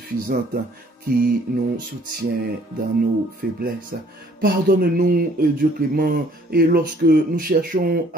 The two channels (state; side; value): normal; both; correlation 0.59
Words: qui nous soutient dans nos faiblesses. Pardonne-nous, Dieu clément, et lorsque nous cherchons